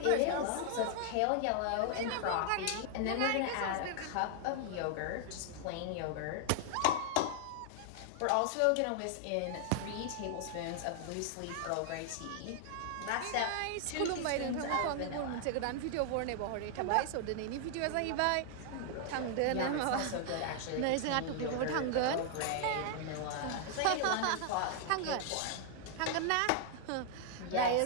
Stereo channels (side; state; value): both; different; correlation 0.00